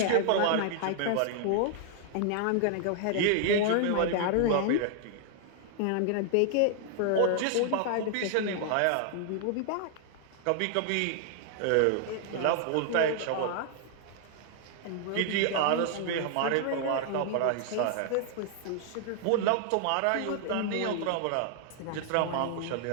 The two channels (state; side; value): different; both; correlation 0.00